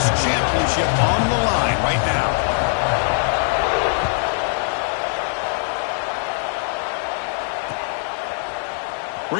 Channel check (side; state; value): right; silent; digital silence